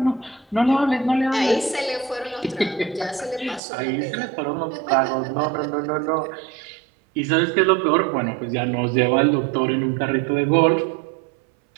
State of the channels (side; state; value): left; drops out; at 3.6 s